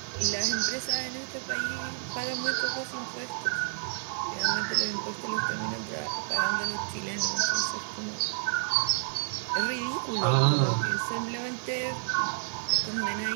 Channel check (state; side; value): silent; left; digital silence